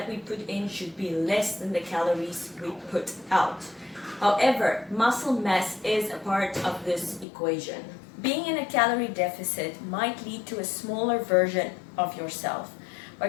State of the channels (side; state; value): right; drops out; at 7.2 s